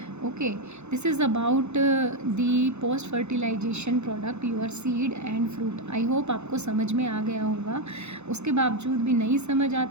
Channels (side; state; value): left; late; 0.81 ms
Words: Okay, this is about the post fertilisation product your seed and fruit. I hope आपको समझ में आ गया होगा। उसके बावजूद भी नहीं समझ